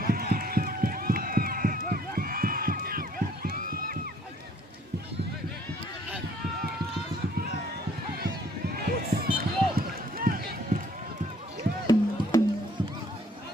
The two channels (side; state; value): both; normal; correlation 0.61